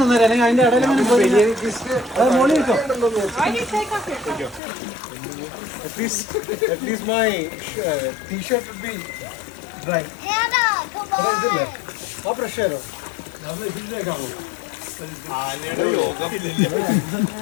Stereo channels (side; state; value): right; drops out; at 4.6 s